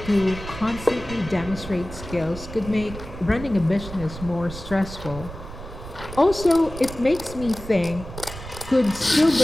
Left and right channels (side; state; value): right; noise; rumble, 12 dB below the sound